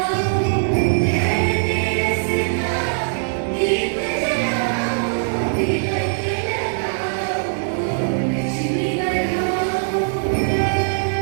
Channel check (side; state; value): left; silent; digital silence